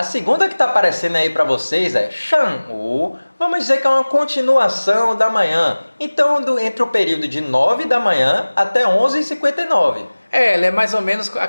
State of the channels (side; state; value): both; inverted; correlation -1.00